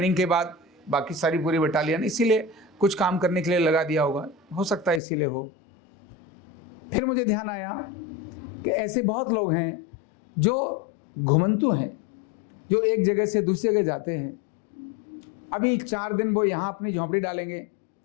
के बाद बाकी सारी पूरी बटालियन इसीलिए कुछ काम करने के लिए लगा दिया होगा, हो सकता है इसीलिए हो। फिर मुझे ध्यान आया कि ऐसे बहुत लोग हैं जो घुमंतु हैं, जो एक जगह से दूसरी जगह जाते हैं। अभी 4 दिन वो यहाँ अपनी झोंपड़ी डालेंगे,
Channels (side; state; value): right; drops out; at 5.0 s